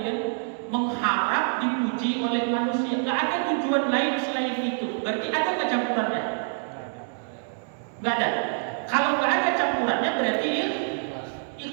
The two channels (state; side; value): silent; left; digital silence